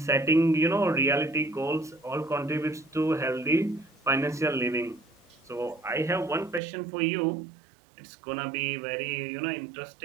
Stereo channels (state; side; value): drops out; left; at 6.6 s